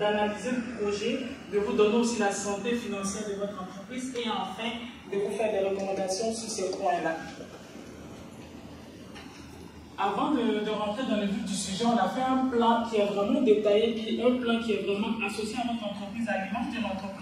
le projet, de vous donner aussi la santé financière de votre entreprise et enfin de vous faire des recommandations sur ces points-là. Avant de rentrer dans le vif du sujet, on a fait un plan qui est vraiment détaillé, puis un plan qui est vraiment associé à votre entreprise, à l'image de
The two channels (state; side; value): identical; both; correlation 1.00